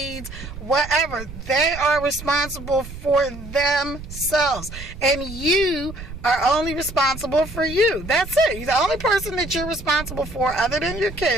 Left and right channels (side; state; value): right; noise; rumble, 12 dB below the sound